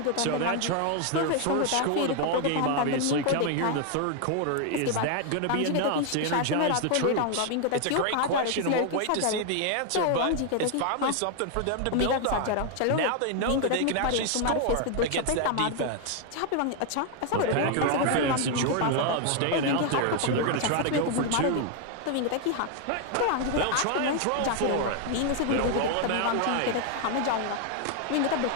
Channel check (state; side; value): different; both; correlation 0.00